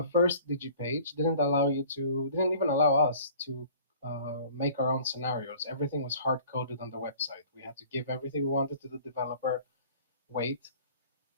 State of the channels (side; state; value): both; inverted; correlation -0.49